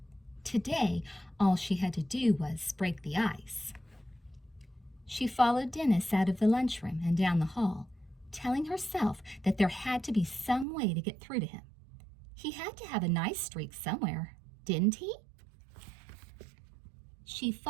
Today, all she had to do was break the ice. She followed Dennis out of the lunchroom and down the hall, telling herself that there had to be some way to get through to him. He had to have a nice streak somewhere, didn't he? She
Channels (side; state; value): left; drops out; at 10.7 s